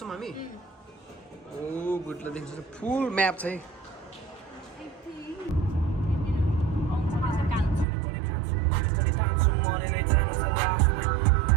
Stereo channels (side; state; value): left; drops out; at 7.9 s